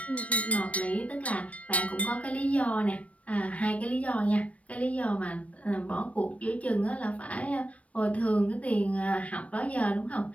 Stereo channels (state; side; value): late; right; 0.065 ms